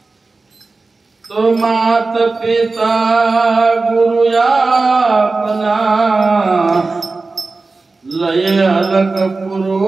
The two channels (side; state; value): left; quieter; 3.7 dB